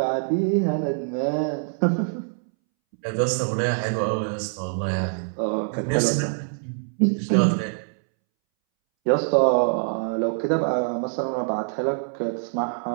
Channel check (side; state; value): left; silent; 62 dB below the other